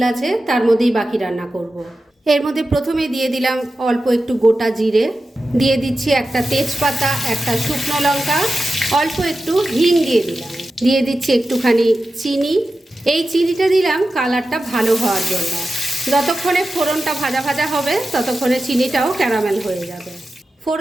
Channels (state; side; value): normal; both; correlation 0.93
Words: আছে তার মধ্যেই বাকি রান্না করব। এর মধ্যে প্রথমে দিয়ে দিলাম অল্প একটু গোটা জিরে, দিয়ে দিচ্ছি একটা তেজপাতা, একটা শুকনো লঙ্কা, অল্প একটু হিং দিয়ে দিলাম, দিয়ে দিচ্ছি একটুখানি চিনি। এই চিনিটা দিলাম কালারটা ভালো হওয়ার জন্য। যতক্ষণে ফোড়নটা ভাজা ভাজা হবে ততক্ষণে চিনিটাও ক্যারামেল হয়ে যাবে।